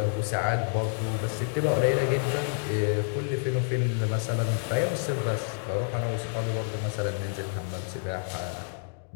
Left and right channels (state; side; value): silent; right; digital silence